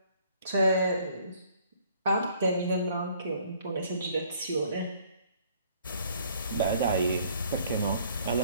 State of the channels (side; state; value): both; inverted; correlation -0.60